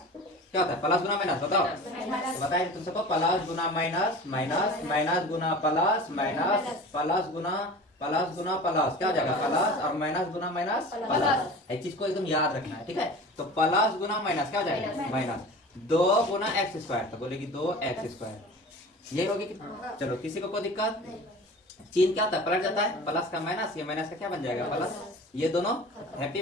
क्या होता है? प्लस गुना माइनस बताओ। तो बताइए तुम सबको, प्लस गुना माइनस, माइनस माइनस गुना प्लस, माइनस प्लस गुना प्लस, क्या हो जाएगा? प्लस और माइनस गुना माइनस प्लस। इस चीज को एकदम याद रखना है, ठीक है। तो प्लस गुना माइनस क्या हो जाएगा? माइनस 2 गुना एक्स स्क्वायर, तो बोलेगी 2x स्क्वायर, यही होगी। चलो किसी को कोई दिक्कत? चिन्ह क्या होता है? पलट जाता है, प्लस का माइनस, ये माइनस का क्या बन जाएगा? प्लस। ये दोनों हैप्पी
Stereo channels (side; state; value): both; normal; correlation 0.37